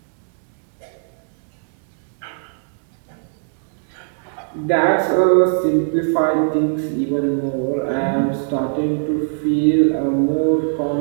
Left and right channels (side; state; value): left; silent; digital silence